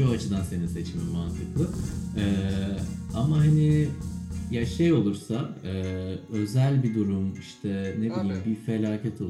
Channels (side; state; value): both; identical; correlation 1.00